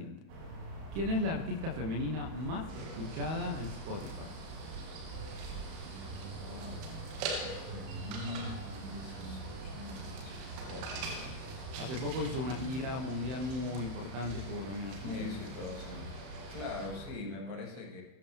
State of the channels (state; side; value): late; left; 31 ms